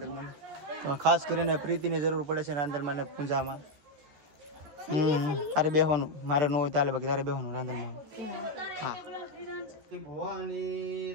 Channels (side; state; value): left; late; 14 ms